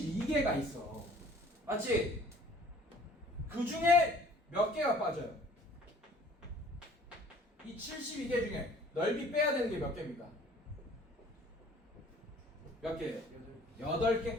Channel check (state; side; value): normal; both; correlation 0.53